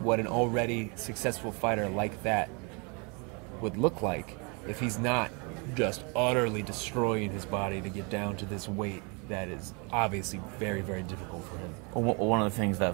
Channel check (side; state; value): left; quieter; 32.6 dB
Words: an already successful fighter like that would look like if he's not just utterly destroying his body to get down to this weight that is obviously very, very difficult for him? One of the things